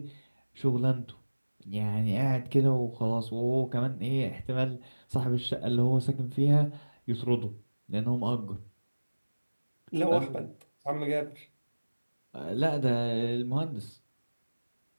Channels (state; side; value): inverted; both; correlation -1.00